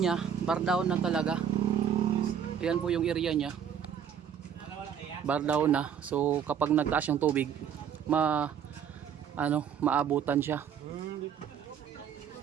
bar down na talaga. Ayan po yung area niya. Bar down na. So kapag nagtaas yung tubig, maabutan siya.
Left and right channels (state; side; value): quieter; left; 8.1 dB